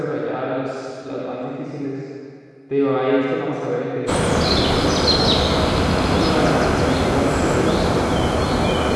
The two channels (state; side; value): identical; both; correlation 1.00